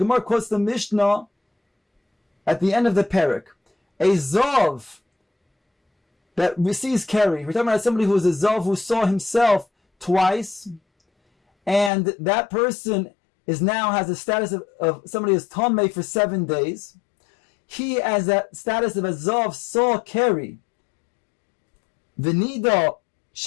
quotes the Mishnah at the end of the parak. A Zav that receives Keri. We're talking about somebody who is a Zav who saw himself twice, and that person is now has the status of somebody who is Tameh for 7 days. He has that status of a Zav saw Keri. V'nida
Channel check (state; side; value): drops out; right; at 11.9 s